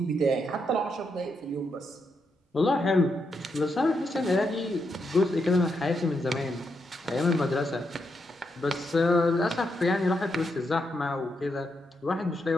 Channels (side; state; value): both; normal; correlation 0.82